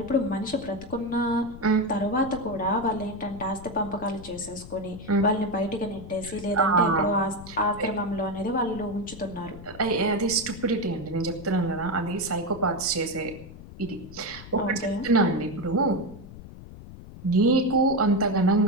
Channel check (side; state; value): left; noise; rumble, 15 dB below the sound